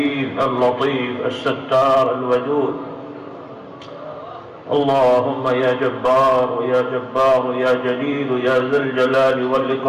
اللطيف الستار الودود. اللهم يا جبار يا جبار يا جليل يا ذا الجلال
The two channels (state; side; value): identical; both; correlation 1.00